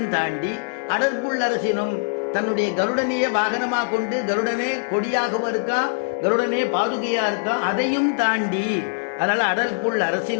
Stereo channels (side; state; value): right; silent; digital silence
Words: தாண்டி அடற்புள் அரசினும் தன்னுடைய கருடனையே வாகனமா கொண்டு, கருடனே கொடியாகவும் இருக்கா, கருடனே பாதுகையா இருக்கா, அதையும் தாண்டி, அதனால அடற்புள்